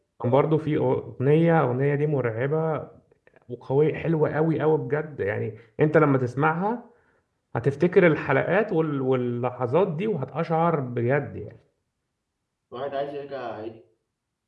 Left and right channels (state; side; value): identical; both; correlation 1.00